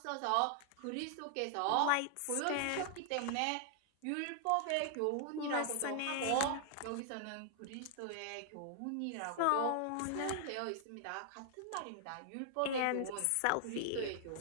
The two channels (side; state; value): both; different; correlation -0.01